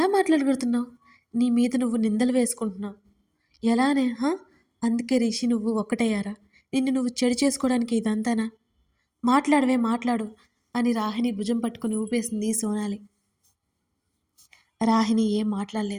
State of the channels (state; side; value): identical; both; correlation 1.00